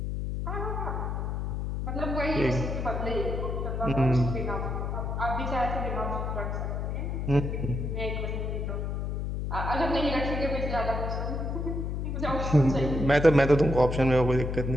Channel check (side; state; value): left; noise; hum, 2 dB below the sound